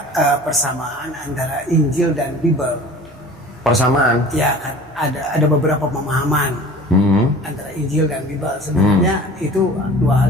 persamaan antara Injil dan Bible. Persamaan? Ya, kan ada beberapa pemahaman antara Injil dan Bible. Sebenarnya itu dua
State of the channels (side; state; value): both; normal; correlation 0.43